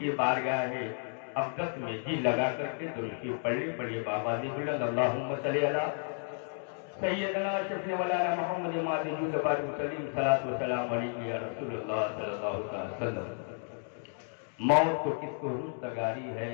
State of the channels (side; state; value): right; silent; 56 dB below the other